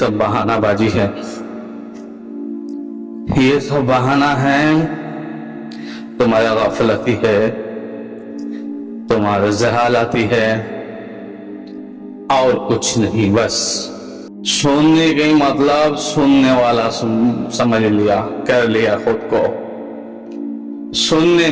बहानाबाजी है, ये सब बहाना है, तुम्हारी गफलती है, तुम्हारी जहालती है, और कुछ नहीं। बस सुनने का मतलब सुनने वाला समझ लिया, कर लिया खुद को, सुनने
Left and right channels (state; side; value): identical; both; correlation 1.00